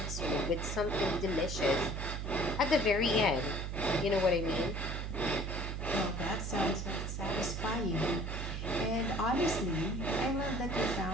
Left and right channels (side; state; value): right; noise; hum, 4 dB below the sound